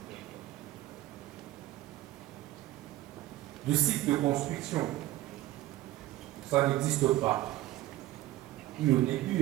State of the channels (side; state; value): left; quieter; 15.6 dB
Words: du cycle de construction. Ça n'existe pas. Et au